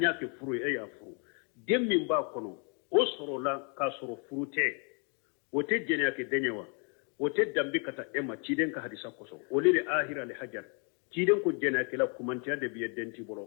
ke furu ya furu dem min ba kono o soro la ka soro furu te o te jenya ke denyewa o te dambe kata ema ciden ka hadisa koso o le ahira le hajar ciden ko jenya ke la kumantiya de biye denti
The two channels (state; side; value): quieter; right; 37.2 dB